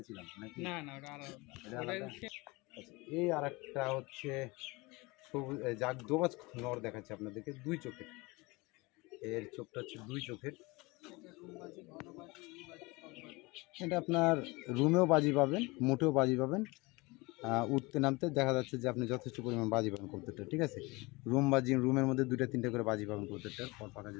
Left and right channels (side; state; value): right; quieter; 24.3 dB